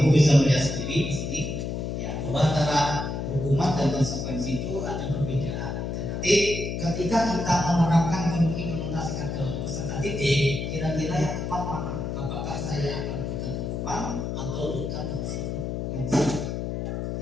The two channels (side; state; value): left; noise; hum, 3 dB below the sound